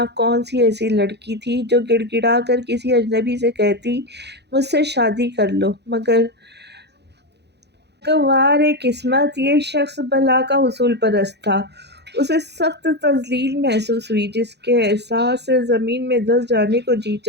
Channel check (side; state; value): left; late; 0.49 ms